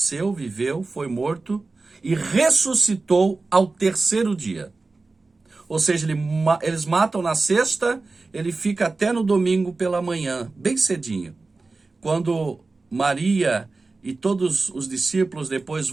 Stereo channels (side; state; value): left; quieter; 3.7 dB